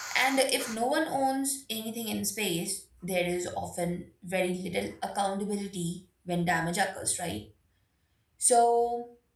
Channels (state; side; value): identical; both; correlation 1.00